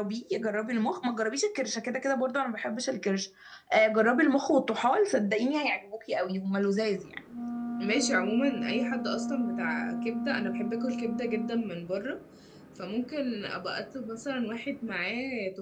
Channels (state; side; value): identical; both; correlation 1.00